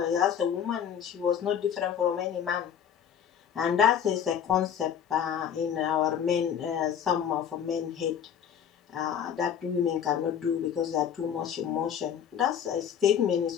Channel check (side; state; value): right; quieter; 8.6 dB